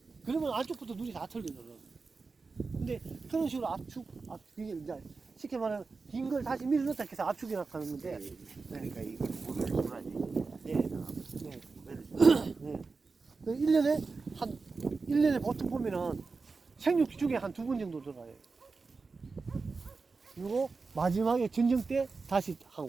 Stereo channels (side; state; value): left; quieter; 4.3 dB